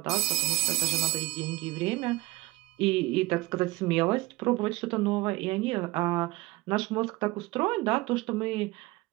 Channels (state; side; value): quieter; left; 19.6 dB